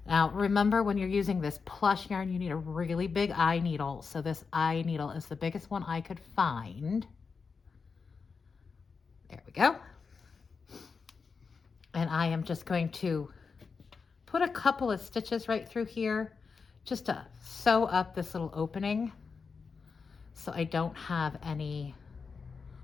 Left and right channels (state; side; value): quieter; right; 5.2 dB